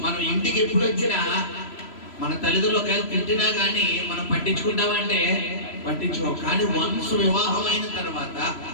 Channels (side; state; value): right; late; 3.0 ms